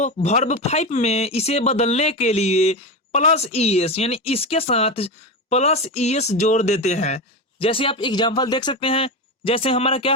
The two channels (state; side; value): normal; both; correlation 0.18